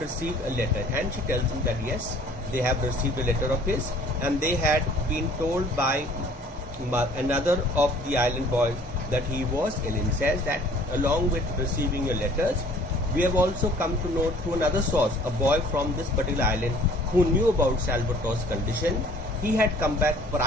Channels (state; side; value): normal; both; correlation 0.53